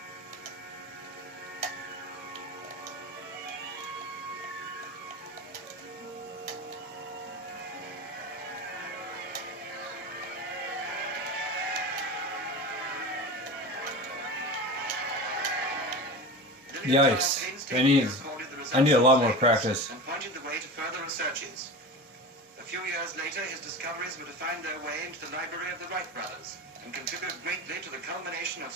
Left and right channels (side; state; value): both; normal; correlation 0.29